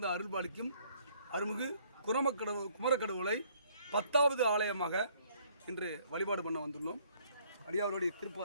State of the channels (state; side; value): inverted; both; correlation -0.63